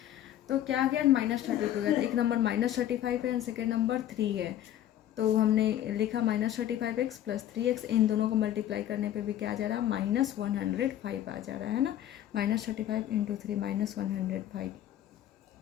तो क्या आ गया, -32 गया। तो एक नंबर -35 है एंड सेकेंड नंबर 3 है, तो हमने लिखा -35x + 3x, इन दोनों को मल्टीप्लाई करने पे भी क्या आ जा रहा है, -105 आ जा रहा है ना। -35 × 3 -105,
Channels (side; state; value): right; quieter; 11.9 dB